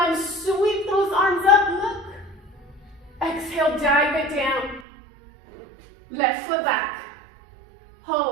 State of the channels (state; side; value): drops out; left; at 4.9 s